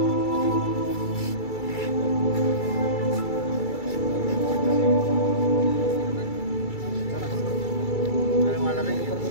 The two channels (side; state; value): right; late; 2.3 ms